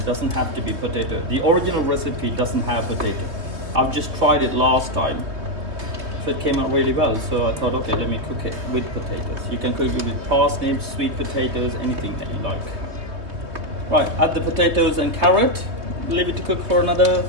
doesn't have to be potato. The original recipe doesn't have potato. I've just tried it last time, so it came out really well. So I thought, okay, let me cook it with potatoes. You can cook it with parsnips, sweet potatoes, anything that you like. Right, add the potatoes and carrot. Leave it to cook for another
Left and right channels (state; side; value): late; left; 3.2 ms